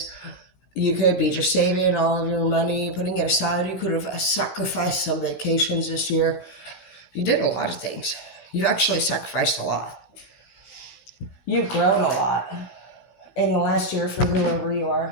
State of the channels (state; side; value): late; right; 15 ms